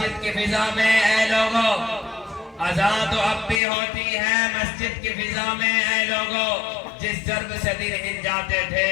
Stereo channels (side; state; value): right; drops out; at 3.6 s